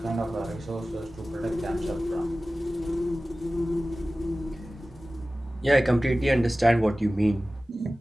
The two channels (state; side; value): normal; both; correlation 0.96